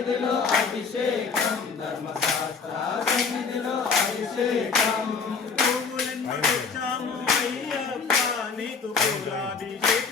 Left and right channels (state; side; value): quieter; right; 5.2 dB